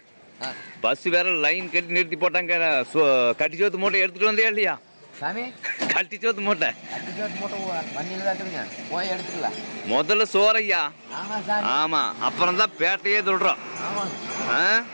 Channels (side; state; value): both; inverted; correlation -1.00